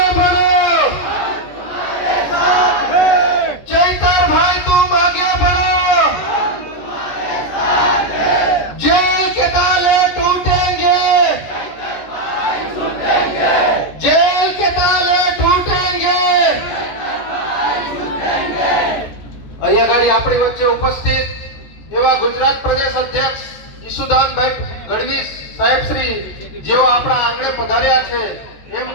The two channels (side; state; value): right; late; 14 ms